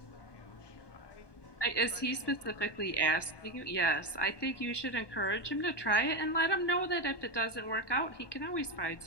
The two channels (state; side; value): late; right; 1.2 ms